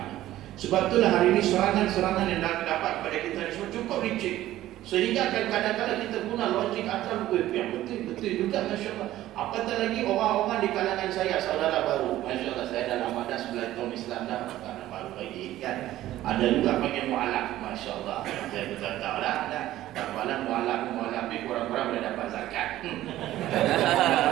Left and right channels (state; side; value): quieter; left; 14.5 dB